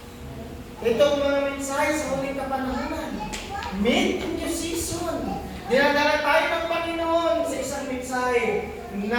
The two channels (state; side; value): identical; both; correlation 1.00